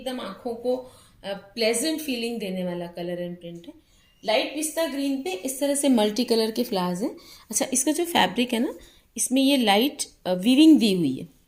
आंखों को प्लेजेंट फीलिंग देने वाला कलर एंड प्रिंट है। लाइट पिस्ता ग्रीन पे इस तरह से मल्टी कलर के फ्लावर्स हैं। अच्छा, इसका जो फैब्रिक है ना, इसमें ये लाइट वीविंग दी हुई है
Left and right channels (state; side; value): identical; both; correlation 1.00